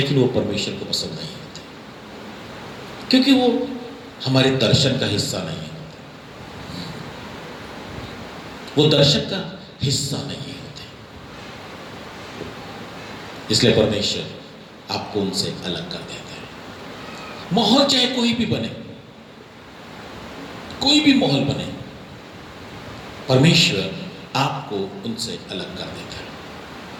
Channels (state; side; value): identical; both; correlation 1.00